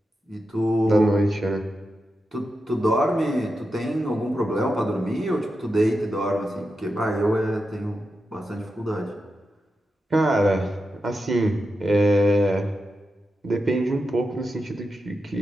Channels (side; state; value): both; normal; correlation 0.89